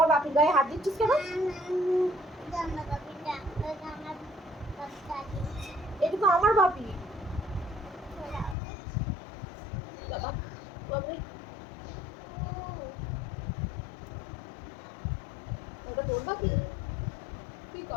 বাপির গায়ে হাত দিচ্ছিস কেন? এটা তো আমার বাপি। বাবা বাবা ওটা তোর বাপি? ঠিক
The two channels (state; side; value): drops out; right; at 8.6 s